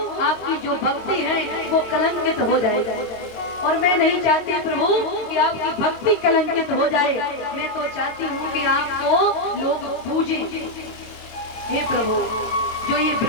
आपकी जो भक्ति है वो कलंकित हो जाएगी और मैं नहीं चाहती प्रभु कि आपकी भक्ति कलंकित हो जाए। मैं तो चाहती हूँ कि आपको लोग पूजे। हे प्रभु, जो ये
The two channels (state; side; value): late; right; 22 ms